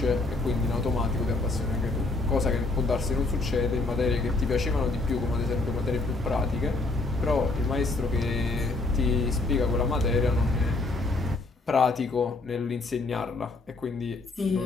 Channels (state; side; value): quieter; right; 3.3 dB